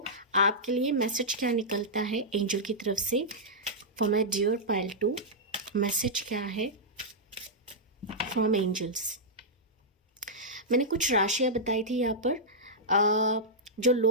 आपके लिए मैसेज क्या निकलता है एंजल की तरफ से for my dear pile 2। Message क्या है फ्रॉम एंजल्स। मैंने कुछ राशियाँ बताई थी यहाँ पर, जो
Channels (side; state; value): both; normal; correlation -0.10